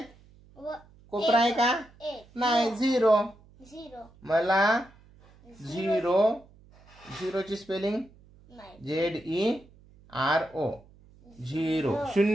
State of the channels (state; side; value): noise; right; hum, 26 dB below the sound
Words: कोपरा आहे का? नाही 0. मला 0 ची स्पेलिंग ZERO 0.